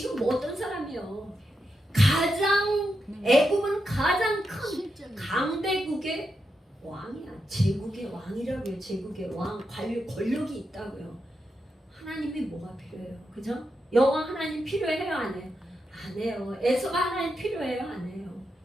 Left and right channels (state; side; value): normal; both; correlation 0.85